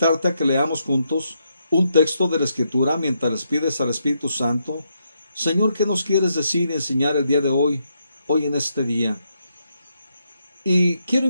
a que leamos juntos un texto de la Escritura mientras les pides al Espíritu Santo, Señor, ¿qué nos quieres decir y enseñar el día de hoy en este día? Y quiero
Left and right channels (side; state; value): both; inverted; correlation -0.79